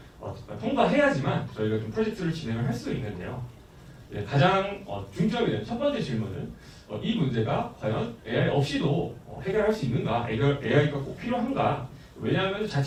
통과해야지만 저희가 좀 프로젝트를 진행을 할 수 있는데요. 가장 중점이 되는 첫 번째 질문은 이 문제가 과연 AI 없이도 해결할 수 있는가? AI가 꼭 필요한가? 왜냐하면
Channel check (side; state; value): both; identical; correlation 1.00